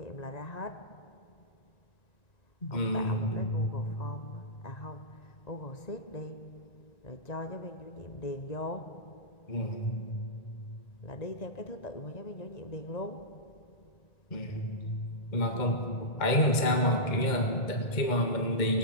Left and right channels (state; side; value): late; right; 2.1 ms